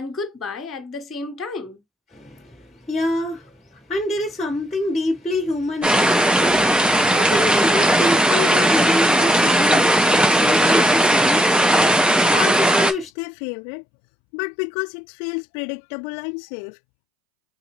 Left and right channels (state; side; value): drops out; right; at 13.1 s